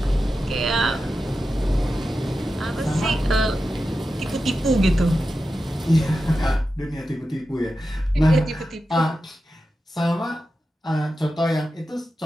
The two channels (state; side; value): normal; both; correlation 0.91